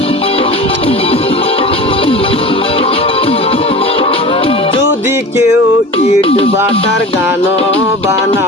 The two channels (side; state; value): both; normal; correlation 0.35